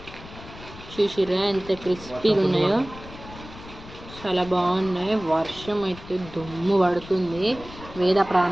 చూసిర్రా ఎంత క్రిస్పీగా ఉన్నాయో, చాలా బాగున్నాయి. వర్షం అయితే దుమ్ము పడుతుంది. వేద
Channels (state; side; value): noise; left; rumble, 16 dB below the sound